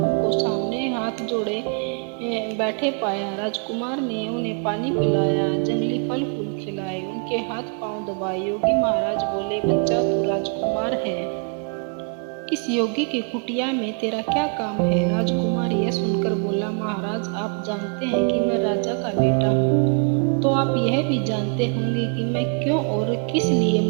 सामने हाथ जोड़े बैठे पाया। राजकुमार ने उन्हें पानी पिलाया, जंगली फल फूल खिलाए, उनके हाथ पांव दबाए। योगी महाराज बोले, बच्चा तू राजकुमार है, इस योगी की कुटिया में तेरा क्या काम है? राजकुमार यह सुनकर बोला, महाराज आप जानते हैं कि मैं राजा का बेटा हूँ, तो आप यह भी जानते होंगे कि मैं क्यों और किस लिए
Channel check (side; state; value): left; quieter; 37.8 dB